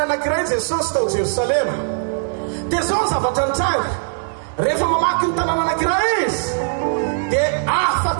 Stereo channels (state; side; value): silent; left; 60 dB below the other